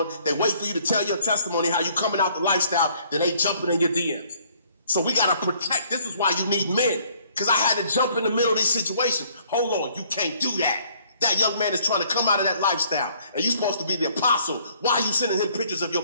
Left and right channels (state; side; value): inverted; both; correlation -0.62